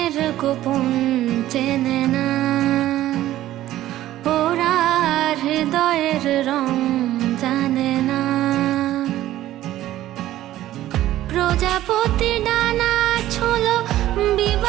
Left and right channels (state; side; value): quieter; left; 14.1 dB